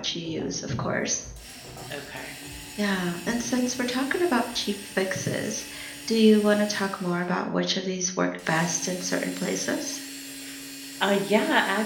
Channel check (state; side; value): identical; both; correlation 1.00